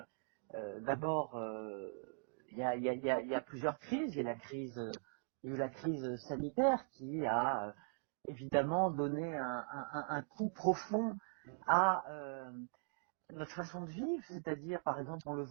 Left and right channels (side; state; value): left; silent; digital silence